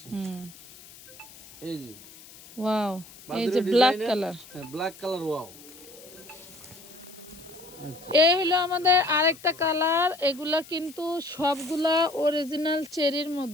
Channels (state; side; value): noise; left; hiss, 20 dB below the sound